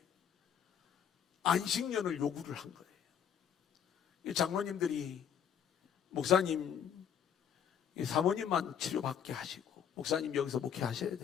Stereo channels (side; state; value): right; quieter; 8.3 dB